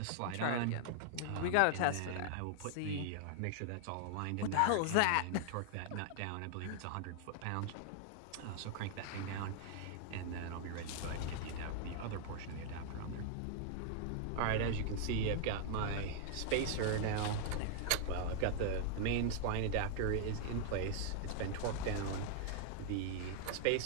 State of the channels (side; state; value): both; different; correlation -0.01